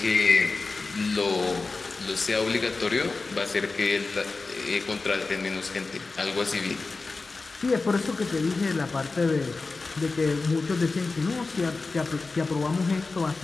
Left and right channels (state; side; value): quieter; right; 3.8 dB